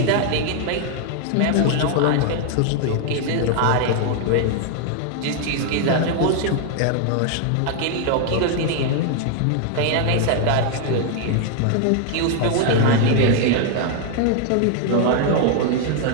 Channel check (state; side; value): different; both; correlation 0.00